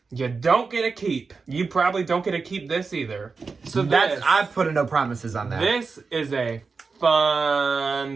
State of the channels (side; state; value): left; quieter; 4.6 dB